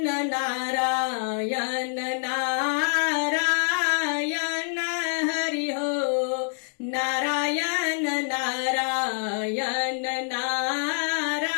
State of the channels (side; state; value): right; silent; 61 dB below the other